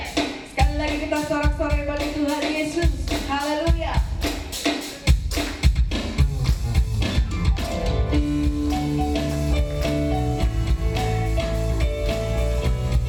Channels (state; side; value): identical; both; correlation 1.00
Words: Sekali lagi kita sorak-sorai bagi Tuhan Yesus. Haleluya.